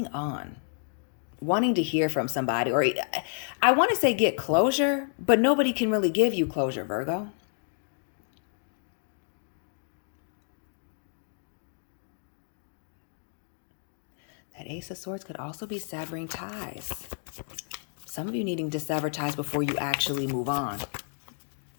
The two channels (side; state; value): right; silent; 58 dB below the other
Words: on, wanting to hear from somebody, or I want to say get closure, but nobody can really give you closure, Virgo. That Ace of Swords could also be severing ties. Some of you needing to sever ties before you actually move on.